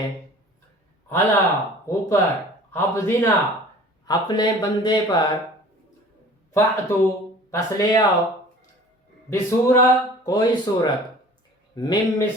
علی اوپر، عبدنا اپنے بندے پر، فأتو پس لے آؤ، بسورہ کوئی صورت، من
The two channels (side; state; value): both; normal; correlation 0.46